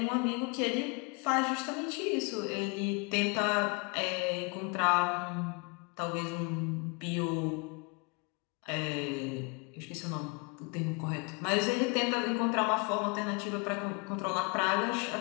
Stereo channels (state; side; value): quieter; right; 31.1 dB